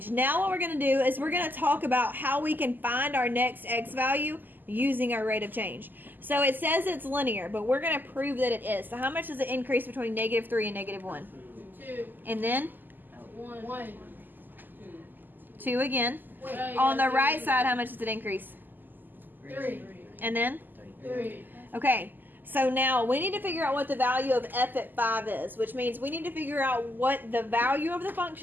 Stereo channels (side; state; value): left; late; 0.088 ms